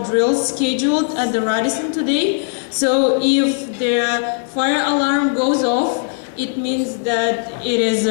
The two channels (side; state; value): right; silent; 66 dB below the other